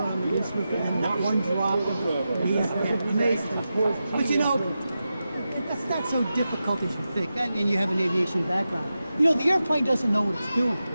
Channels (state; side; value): inverted; both; correlation -0.91